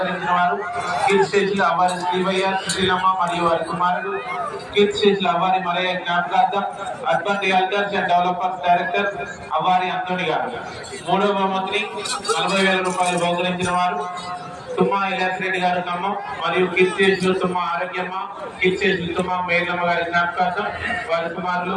వారు కీర్తిశేషులు అవ్వారి శ్రీవయ్య సుశీలమ్మ మరియు వారి కుమారుడు కీర్తిశేషులు అవ్వారి మలయ్య జ్ఞాపకార్థం urban realtors and developers director Avvari Anthony గారు. మూడవ బహుమతిని 40,000 రూపాయలు బహుకరించిన వారు తుమ్మా ఇలాస్ రెడ్డి గారు ఖమ్మం మరియు కీర్తిశేషులు తుమ్మా ఆరోగ్యమ్మ కీర్తిశేషులు తుమ్మా మేఘమ్మ గారి జ్ఞాపకార్థం వారి కుమారులు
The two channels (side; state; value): both; identical; correlation 1.00